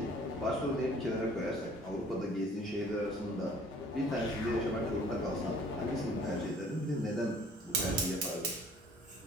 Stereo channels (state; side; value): normal; both; correlation 0.53